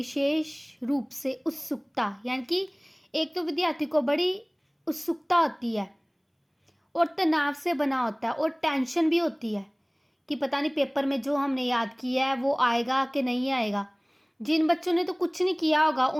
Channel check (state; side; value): identical; both; correlation 1.00